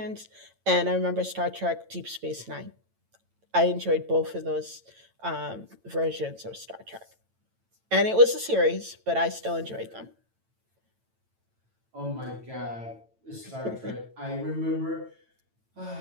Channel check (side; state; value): left; late; 9.0 ms